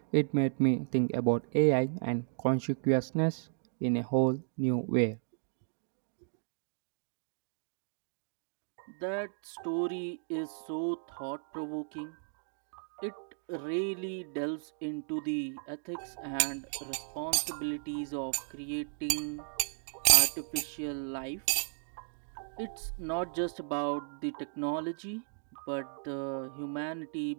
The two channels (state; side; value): silent; left; digital silence